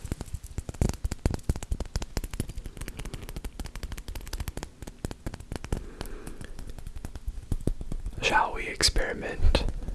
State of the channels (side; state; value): both; identical; correlation 1.00